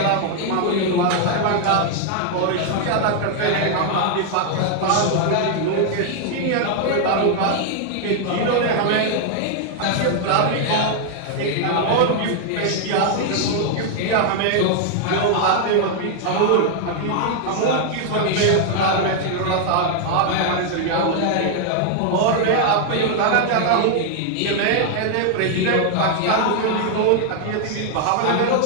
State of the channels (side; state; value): both; different; correlation 0.00